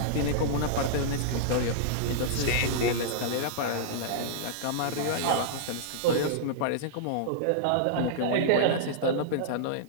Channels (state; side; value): different; both; correlation -0.02